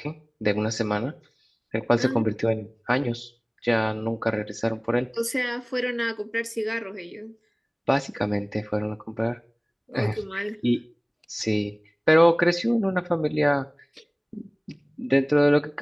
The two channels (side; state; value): both; identical; correlation 1.00